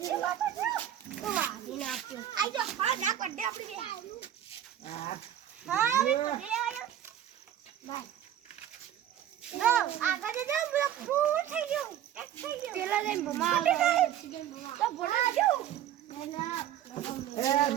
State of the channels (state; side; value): quieter; left; 11.1 dB